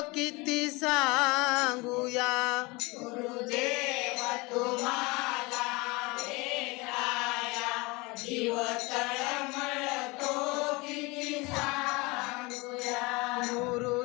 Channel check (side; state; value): right; quieter; 25.0 dB